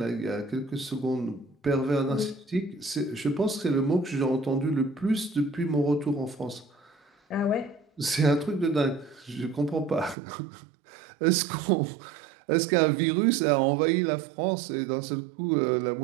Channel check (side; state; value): left; drops out; at 10.2 s